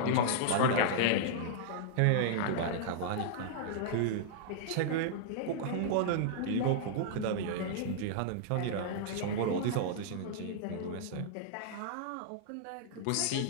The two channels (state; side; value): different; both; correlation -0.02